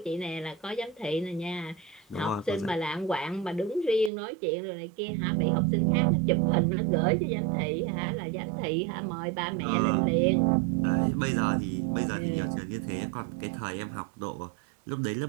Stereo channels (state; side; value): drops out; left; at 4.1 s